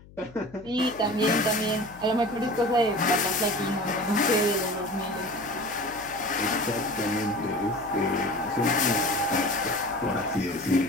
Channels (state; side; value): noise; left; hum, 22 dB below the sound